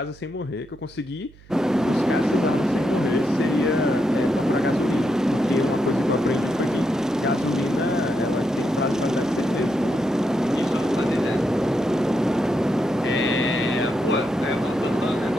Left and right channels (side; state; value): right; noise; hum, 24 dB below the sound